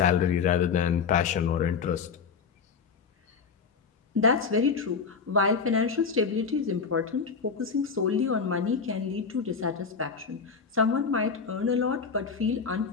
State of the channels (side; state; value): right; quieter; 5.6 dB